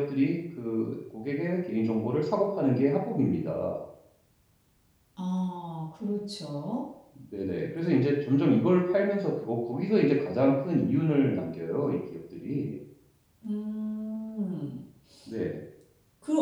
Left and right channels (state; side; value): identical; both; correlation 1.00